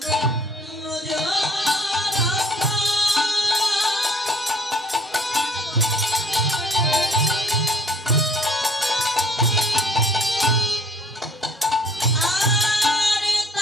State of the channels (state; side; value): normal; both; correlation 0.57